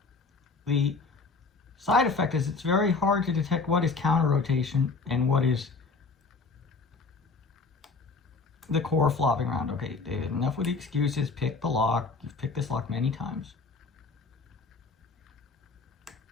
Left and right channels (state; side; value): quieter; right; 4.3 dB